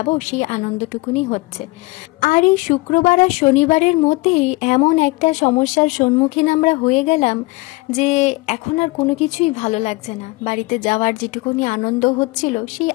সেই আনন্দটুকুনি হচ্ছে। আর এই শুক্রবার আর শনিবারের মধ্যেই এমন একটা সমস্যার সম্মুখীন আমরা হয়ে গেলাম যে এখন আর কোনো কিছুই ভালো লাগছে না। বাড়িতে যাওয়ার যেটুকুনি আনন্দ হচ্ছিল, সেই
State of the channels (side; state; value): right; quieter; 23.9 dB